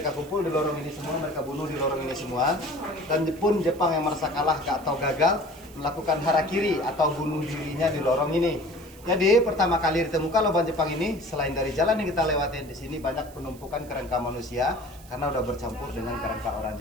kumpul di lorong ini semua, mereka bunuh di lorong ini semua. Dan pun Jepang yang merasa kalah atau gagal melakukan harakiri atau bunuh dirinya di lorong ini. Jadi pertama kali ditemukan lubang Jepang ini, selain dari jalan yang kita lewatin di sini banyak penumpukan kerangka manusia karena udah bercampur dengan kerangka orang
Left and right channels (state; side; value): noise; right; hiss, 23 dB below the sound